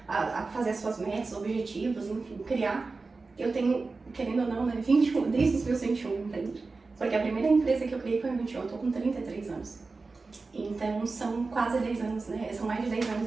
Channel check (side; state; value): left; quieter; 3.9 dB